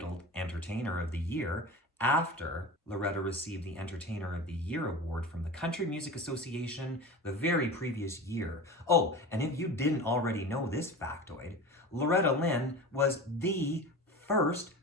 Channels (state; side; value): normal; both; correlation 0.31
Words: Entertainer of the Year after Loretta received the Entertainer of the Year award from the Country Music Association the very previous year. Oh, and if you didn't already know this factoid, Loretta Lynn was the first